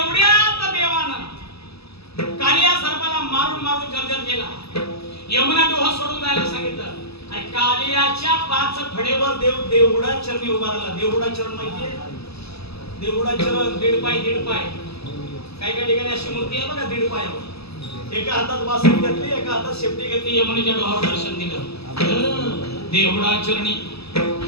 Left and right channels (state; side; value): late; right; 0.78 ms